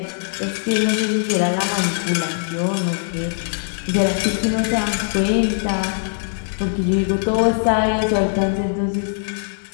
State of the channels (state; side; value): silent; right; digital silence